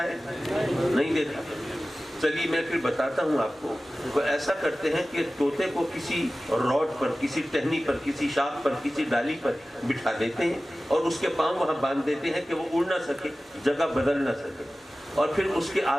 ہے؟ نہیں دیکھا۔ چلیے میں پھر بتاتا ہوں آپ کو۔ وہ ایسا کرتے ہیں کہ طوطے کو کسی راڈ پر، کسی ٹہنی پر، کسی شاخ پر، کسی ڈالی پر بٹھا دیتے ہیں اور اس کے پاؤں وہاں باندھ دیتے ہیں کہ وہ اڑ نہ سکے، جگہ بدل نہ سکے، اور پھر اس کے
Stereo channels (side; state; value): both; normal; correlation 0.96